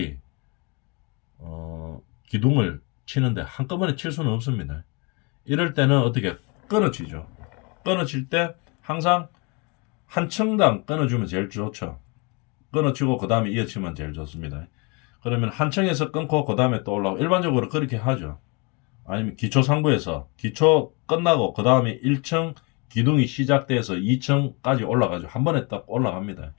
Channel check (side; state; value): right; quieter; 30.9 dB